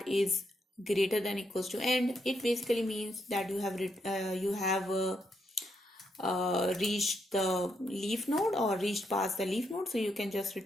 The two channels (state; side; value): normal; both; correlation 0.79